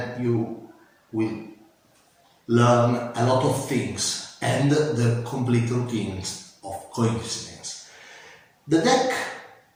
you will learn a lot of things and the complete routines of coincidence. The deck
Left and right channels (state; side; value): identical; both; correlation 1.00